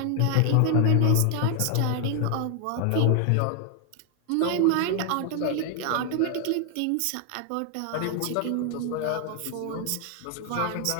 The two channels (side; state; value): both; different; correlation 0.00